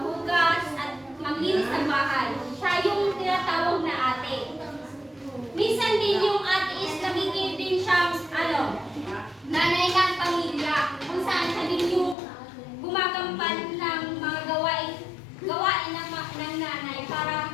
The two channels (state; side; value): drops out; right; at 12.2 s